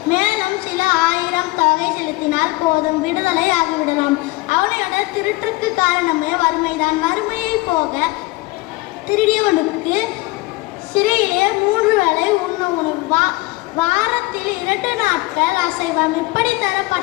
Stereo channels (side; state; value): right; quieter; 21.6 dB